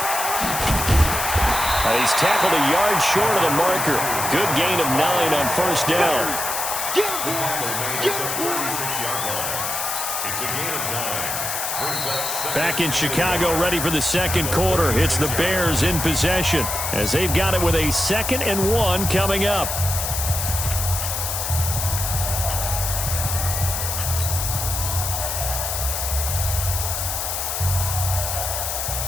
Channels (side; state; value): left; noise; hiss, 2 dB below the sound